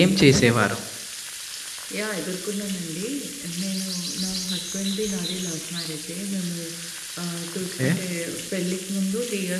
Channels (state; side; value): identical; both; correlation 1.00